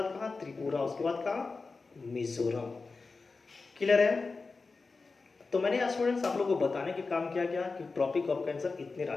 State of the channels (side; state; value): right; quieter; 4.1 dB